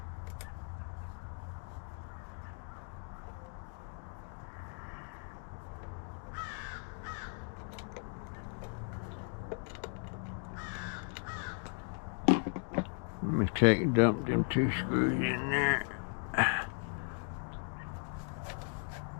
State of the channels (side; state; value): right; quieter; 39.4 dB